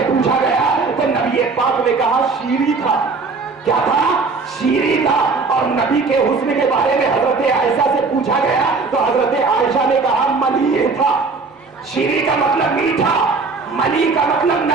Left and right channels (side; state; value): left; quieter; 4.3 dB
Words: पूछा गया तो नबी पाक ने कहा शीरी था। क्या था? शीरी था। और नबी के हुस्न के बारे में हजरत आयशा से पूछा गया तो हजरत आयशा ने कहा मलीह था। शीरी का मतलब मीठा, मली का मतलब